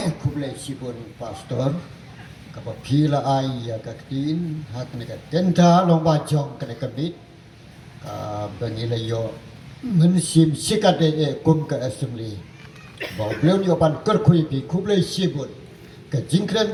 kublai sibun pastor kapa pila ai ya kaktin hak ne ka tenta long ba jong kene kabit ka bangila yo mensim sikade kum ke assembly bau beliau ni opan kerkui pi kublai sibut ke jingkran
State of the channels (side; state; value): both; identical; correlation 1.00